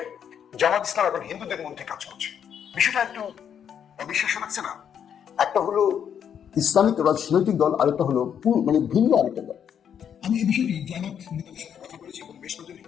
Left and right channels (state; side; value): quieter; right; 8.4 dB